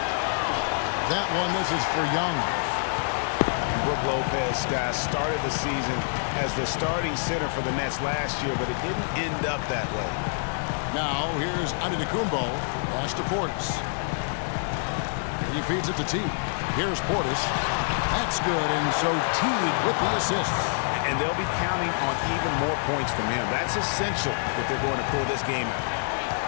That one, this is for Young. Brook Lopez, guys, started the season as the starting center for the Nets last year, but it didn't end up that way. Now, here's Antetokounmpo. Pass to Portis. He feeds it to Teague. Here's Portis. That's good, and so Teague with the assist. And they'll be counting on even more points from him. That's essential if they're going to pull this game out.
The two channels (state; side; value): silent; right; digital silence